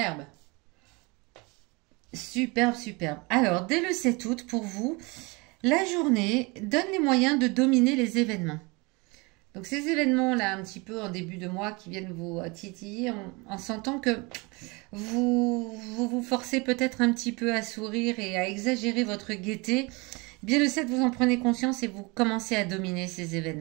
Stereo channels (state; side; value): quieter; left; 27.1 dB